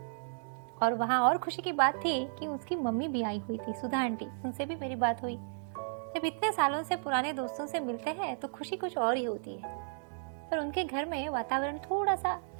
और वहाँ और खुशी की बात थी कि उसकी मम्मी भी आई हुई थी, सुधा आंटी। उनसे भी मेरी बात हुई। जब इतने सालों से पुराने दोस्तों से मिलते हैं तो खुशी कुछ और ही होती है। पर उनके घर में वातावरण थोड़ा सा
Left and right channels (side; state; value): left; silent; digital silence